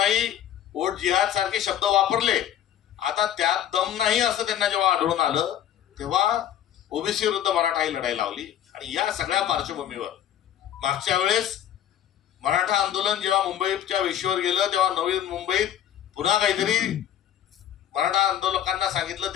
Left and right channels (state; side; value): quieter; right; 10.8 dB